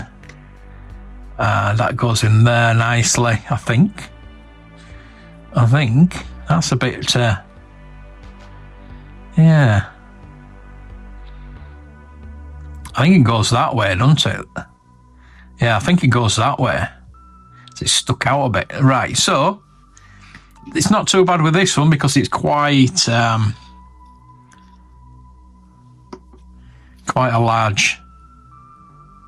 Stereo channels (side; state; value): both; identical; correlation 1.00